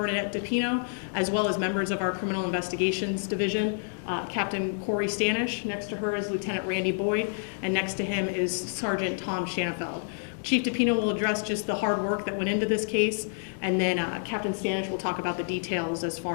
DiPino, as well as members of our Criminal Investigations Division, Captain Corey Stanish. Next to her is Lieutenant Randy Boyd, and next to him is Sergeant Tom Shanafeld. Chief DiPino will address just the hard work that went into this case, and then Captain Stanish will talk about the details as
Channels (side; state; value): right; silent; digital silence